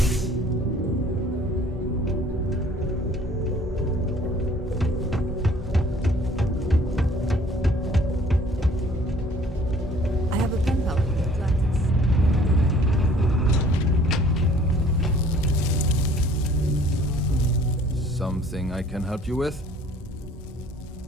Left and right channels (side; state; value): both; normal; correlation 0.55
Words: Something I can help you with?